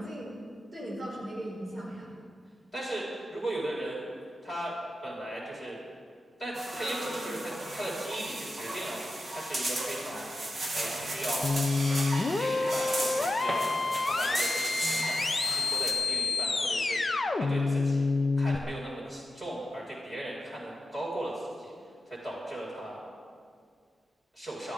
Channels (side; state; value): both; normal; correlation 0.91